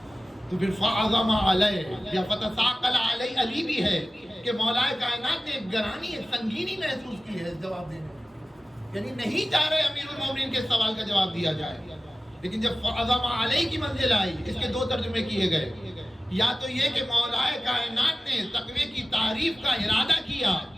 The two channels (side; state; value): both; normal; correlation 0.96